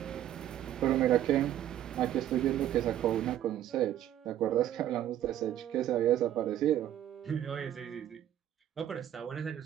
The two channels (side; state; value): left; quieter; 11.7 dB